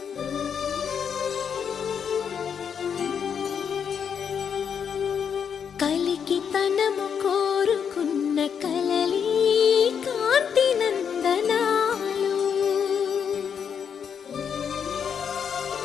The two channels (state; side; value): quieter; right; 7.4 dB